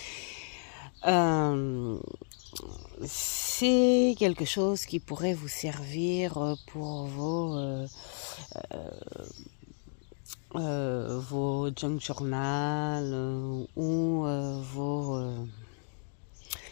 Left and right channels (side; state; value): right; silent; 56 dB below the other